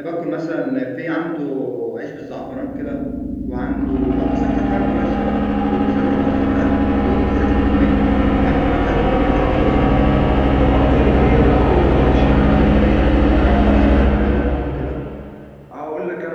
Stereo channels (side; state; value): both; identical; correlation 1.00